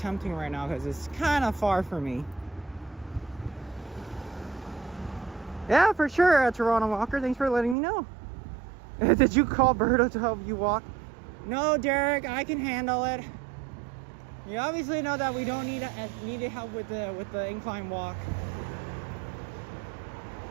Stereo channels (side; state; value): left; drops out; at 7.8 s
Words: right now, because it's kind of far for me. Yeah, for sure, Toronto Walker. Thanks for letting me know. Did you call Berto to help you walk? No, Derek, I can handle it. You obviously know that we don't need help with the incline walk.